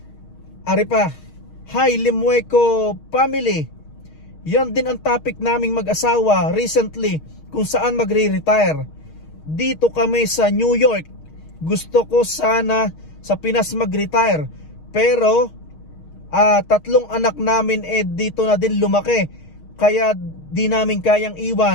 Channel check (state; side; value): late; right; 6.4 ms